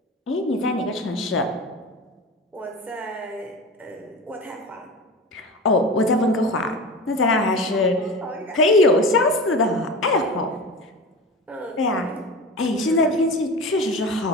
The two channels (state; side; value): normal; both; correlation 0.30